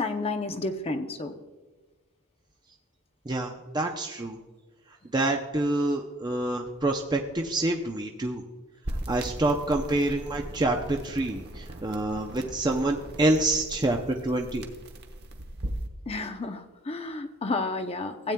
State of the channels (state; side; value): normal; both; correlation 0.59